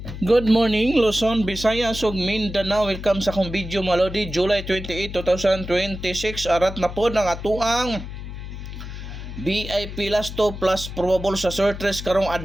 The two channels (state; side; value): noise; left; hum, 9 dB below the sound